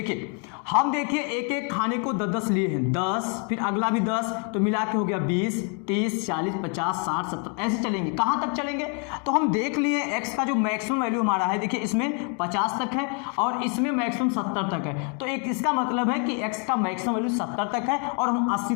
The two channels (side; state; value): right; quieter; 38.8 dB